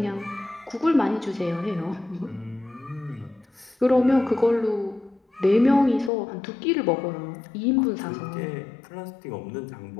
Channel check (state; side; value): drops out; right; at 6.1 s